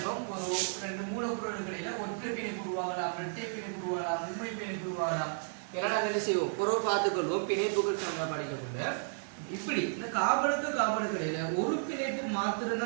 ஒரு ரெண்டு மூலப்பொருளுக்கு இடையில ஒற்றை பிணைப்பு உருவாகலாம், இரட்டை பிணைப்பு உருவாகலாம், உண்மை பிணைப்பு உருவாகலாம். எல்லாம் நாங்கள் என்ன செய்வோம்? பொருள் பார்த்துக்கொள்வோம். பிணைப்புகள் நம்ம படிக்கக்குள்ள இப்படி இந்த கார்பனுக்கு இடையில ஒரு பிணைப்பு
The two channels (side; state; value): left; silent; digital silence